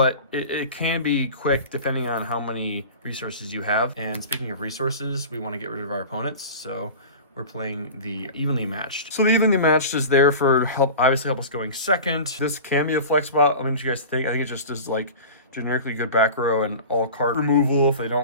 it can be quick depending on how many resources you have. And speaking of resources, we want to get rid of our opponents, so we're playing the Evenly Matched. So the Evenly Matched is there for obviously help us going second. This can be a flex spot. I mean, what you guys think? I think it just is like generically good back row and all card removal if they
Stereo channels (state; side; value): inverted; both; correlation -0.35